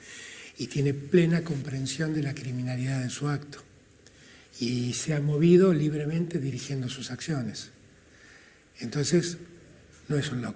y tiene plena comprensión de la criminalidad de su acto y se ha movido libremente dirigiendo sus acciones. Entonces, no es un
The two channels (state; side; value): identical; both; correlation 1.00